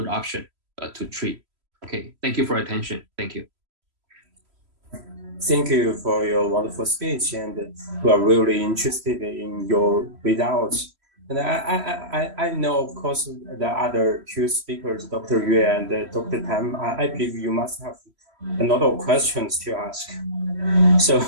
option to treat. Okay, thank you for your attention. Thank you. Thank you for your wonderful speech, and we are really interested in your results. And I know, of course, the other two speakers, Dr. Yue and Dr. Tam, I believe you must have a lot of questions to ask. So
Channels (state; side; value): late; left; 3.1 ms